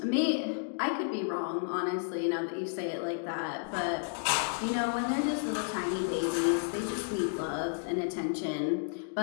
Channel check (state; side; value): silent; right; digital silence